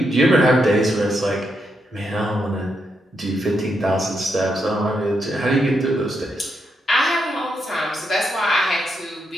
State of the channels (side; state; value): both; normal; correlation 0.81